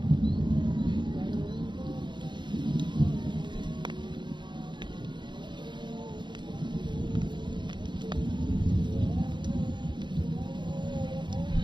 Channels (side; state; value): left; late; 0.22 ms